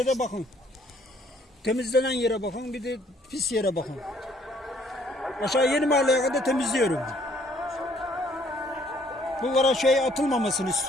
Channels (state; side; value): normal; both; correlation 0.63